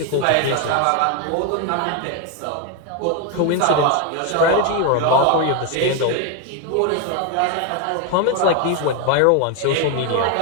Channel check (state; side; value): different; both; correlation 0.01